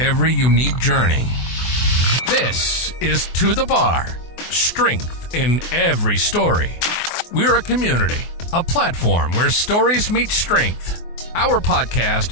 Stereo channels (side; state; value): right; late; 24 ms